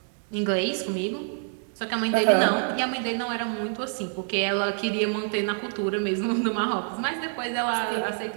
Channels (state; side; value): silent; left; 60 dB below the other